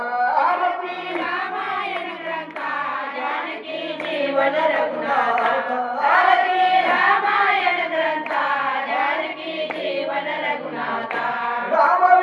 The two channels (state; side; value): identical; both; correlation 1.00